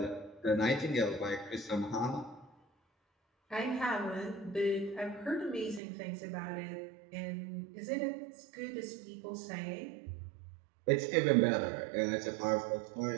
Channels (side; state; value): left; drops out; at 5.8 s